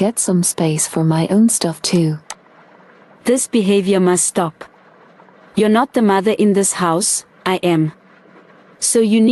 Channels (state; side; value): identical; both; correlation 1.00